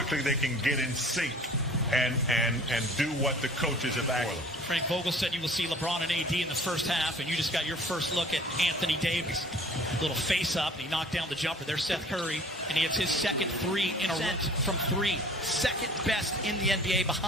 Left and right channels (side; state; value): both; normal; correlation 0.49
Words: they can get in sync and do what the coaches have asked. Frank Vogel said you will see LeBron and AD in the first half, and you just got your first look at Anthony Davis. Little face-up, and he knocked down the jumper. There's Seth Curry, and he hits his second three in a row from three. Second best in the NBA